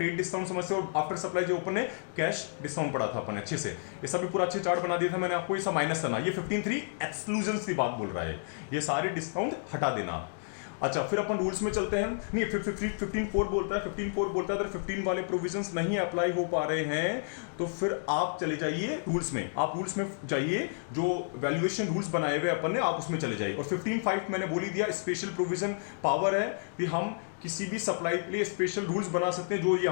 डिस्काउंट समझते हैं, और आफ्टर सप्लाई जो अपन ने कैश डिस्काउंट पढ़ा था अपन अच्छे से, ये सब भी पूरा अच्छे चार्ट बना दिया था मैंने आपको, ये सब माइनस करना। ये 15.3 एक्सक्लूजन की बात बोल रहा है, ये सारे डिस्काउंट हटा देना आप। अच्छा, फिर अपन रूल्स में चलते हैं। नहीं, 15.4 बोलता है, 15.4 बोलता है अगर 15 वाले प्रोविजंस नहीं अप्लाई हो पा रहे हैं तो फिर आप चले जाइए रूल्स में, आप रूल्स में जाइए, जो वैल्यूएशन रूल्स बनाए हुए अपन ने, आप उसमें चले जाइए। और 15.5 मैंने बोल ही दिया, स्पेशल प्रोविजन पावर है कि हम किसी भी सप्लाई के लिए स्पेशल रूल्स बना सकते हैं, जो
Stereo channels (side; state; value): right; silent; digital silence